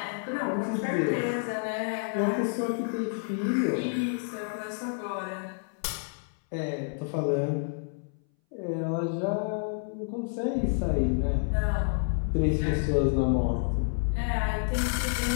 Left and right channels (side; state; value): right; silent; 59 dB below the other